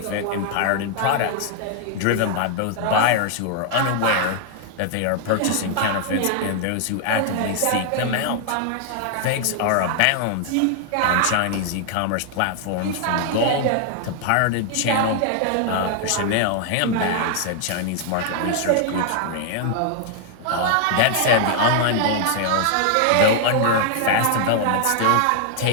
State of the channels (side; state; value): both; different; correlation 0.00